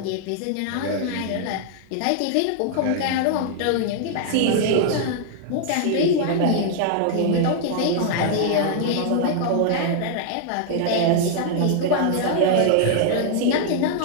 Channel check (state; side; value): different; both; correlation -0.01